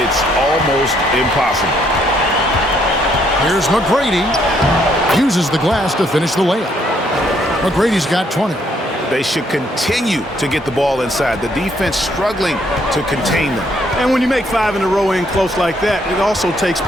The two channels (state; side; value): normal; both; correlation 0.69